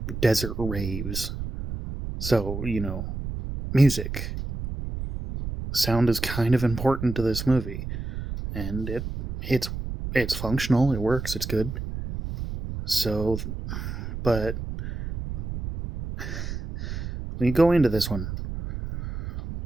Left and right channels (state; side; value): noise; right; rumble, 6 dB below the sound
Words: desert raves. So music sound is kind of important to this movie, and it's it's functional. It works. It's good. So, but when you go into this one,